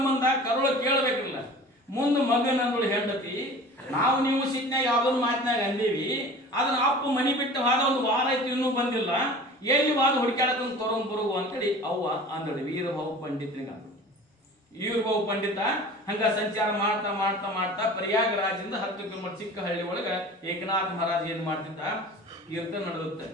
ಕರುಳ ಕೇಳಬೇಕಿಲ್ಲ. ಮುಂದೆ ಮಗನಂದಳು ಹೆಂಡತಿ, ನಾವು ನೀವು ಸಿಟ್ನಾಗ ಯಾವ್ದೊಂದು ಮಾತಿನಾಗ ಅಂದೀವಿ, ಅದನ್ನ ಅಪ್ಪ ಮನಿ ಬಿಟ್ಟು ಹಾದ ಒಂದು ವಾರ ಆಯ್ತು ಇನ್ನೂ ಬಂದಿಲ್ಲ, ಎಲ್ಲಿ ವಾದ ಹುಡುಕಾಡಕೊಂಡು ತೊಗೊಂಡ್ ಬರುವು ಅಂತೇಳಿ ಅವ್ವ ಅಂದಳು. ವೀರಭಾವು ಪಂಡಿತನಿಗೆ ಅಂದಳು. ವೀರಭಾವು ಪಂಡಿತ ಹಂಗ ಸಂಚಾರ ಮಾಡ್ತಾ ಮಾಡ್ತಾ ಮಾಡ್ತಾ ಪ್ರಯಾಗರಾಜದಿಂದ 10 ಕಿಲೋಮೀಟರ್ ಚಿಕ್ಕ ಹಳ್ಳಿ ಒಳಗ ಏಕನಾಥ ಮಹಾರಾಜ್ ಏನ್ ಮಾಡ್ತಿದ್ದ? ಕೀರ್ತನ ನಡೆದುತ್ತೆ.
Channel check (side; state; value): both; normal; correlation 0.41